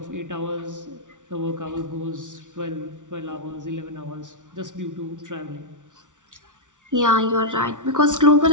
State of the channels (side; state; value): left; late; 0.87 ms